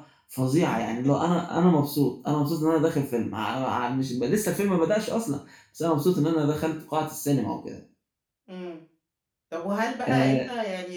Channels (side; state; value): both; identical; correlation 1.00